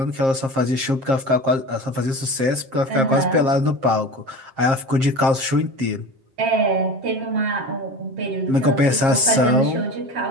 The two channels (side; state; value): left; late; 7.5 ms